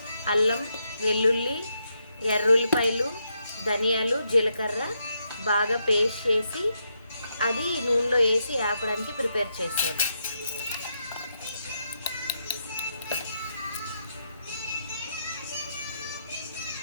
అల్లం, వెల్లుల్లి, ఎర్రుల్లిపాయలు, ధనియాలు, జీలకర్ర బాగా పేస్ట్ చేసి అది నూనెలో వేసి ఆపడానికి ప్రిపేర్ చేశారు.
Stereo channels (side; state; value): both; inverted; correlation -0.81